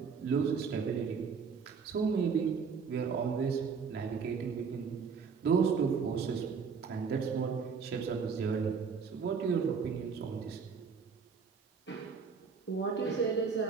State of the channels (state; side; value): quieter; left; 5.8 dB